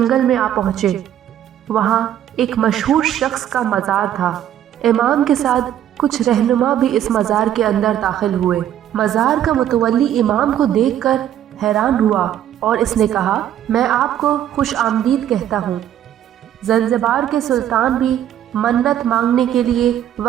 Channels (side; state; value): left; quieter; 11.0 dB